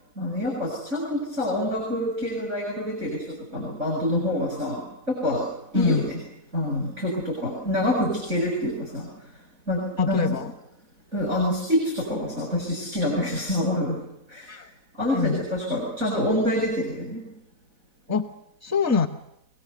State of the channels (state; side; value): late; left; 4.0 ms